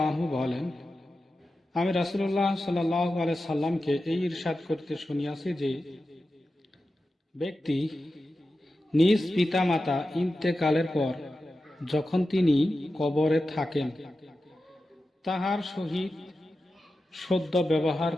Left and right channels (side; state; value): both; normal; correlation 0.92